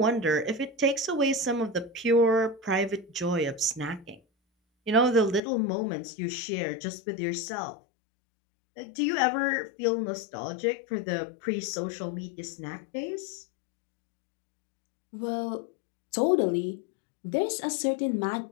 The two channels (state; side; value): drops out; right; at 5.4 s